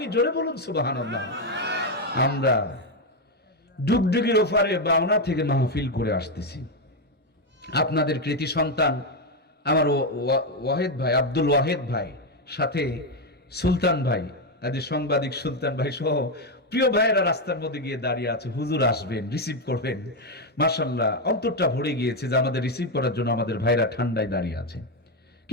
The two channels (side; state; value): both; normal; correlation 0.06